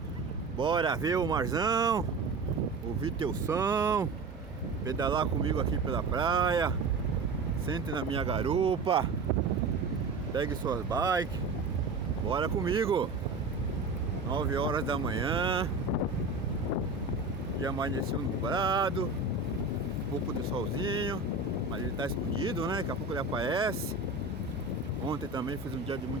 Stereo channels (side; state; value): left; quieter; 3.6 dB